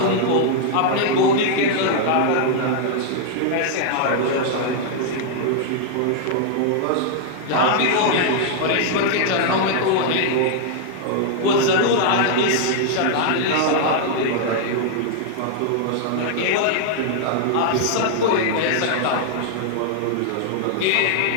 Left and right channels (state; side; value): different; both; correlation 0.00